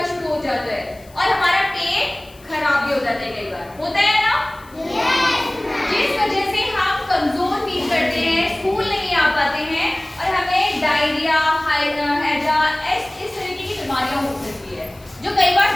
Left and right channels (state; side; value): noise; left; hiss, 26 dB below the sound